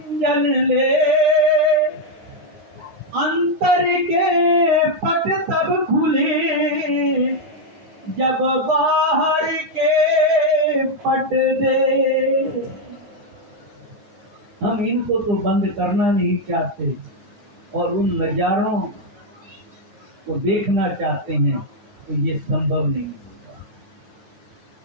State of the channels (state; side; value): late; left; 9.9 ms